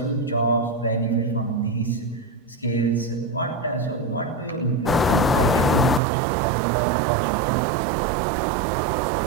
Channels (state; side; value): drops out; left; at 6.0 s